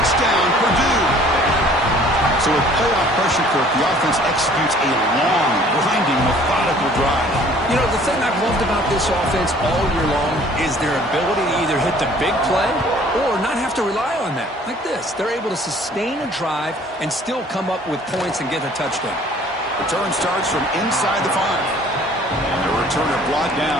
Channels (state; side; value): normal; both; correlation 0.54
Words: Purdue. So with playoff pressure, Kirk, the offense executes a long, grinding, methodical drive. You know, the thing I've loved about this offense all year long is their ability to either hit the big play or not have to rely on that. Like this. They're able to sustain a drive and still come up with points and get a touchdown. Return starts from inside the 5. And the returner brought